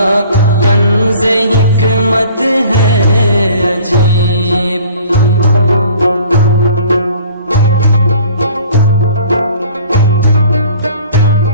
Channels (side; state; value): both; inverted; correlation -0.50